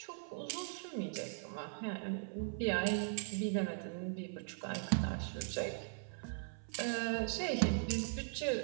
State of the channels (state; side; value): silent; left; 51 dB below the other